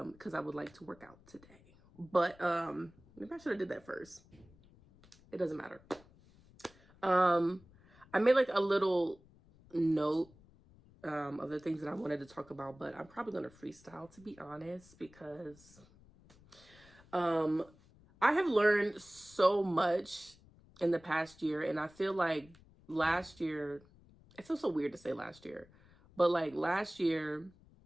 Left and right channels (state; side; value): noise; left; rumble, 26 dB below the sound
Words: I would like to work out today. But maybe I should have did that first. It doesn't matter. I made like a little note of the things that I wanted to talk about, but I'm probably going to freestyle, to be honest, because I have learned so much in the past year, and I feel like last year, it feels so weird to say last year, but like last year,